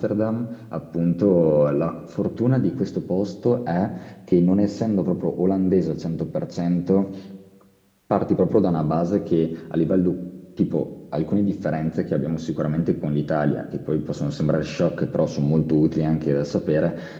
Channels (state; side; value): identical; both; correlation 1.00